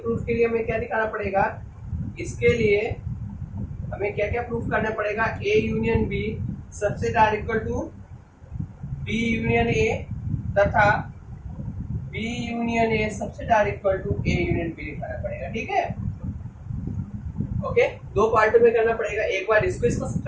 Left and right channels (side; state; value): both; identical; correlation 1.00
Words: के लिए हमें क्या दिखाना पड़ेगा, इसके लिए हमें क्या क्या प्रूफ करना पड़ेगा, a union b subset r equal to b union a तथा b union a subset r equal to a union b दिखाना पड़ेगा। ठीक है, ओके, दो पार्टों में करना पड़ेगा, एक बार इसको इसका